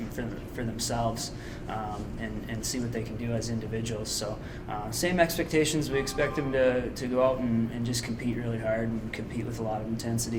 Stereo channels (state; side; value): identical; both; correlation 1.00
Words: for themselves. And see what they can do as individuals. So same expectations. We expect them to go out and just compete really hard and compete with a lot of